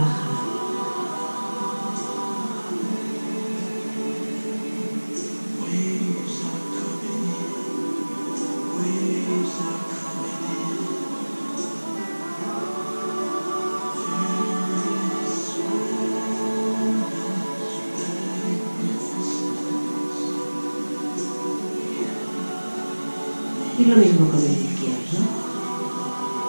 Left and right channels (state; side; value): inverted; both; correlation -1.00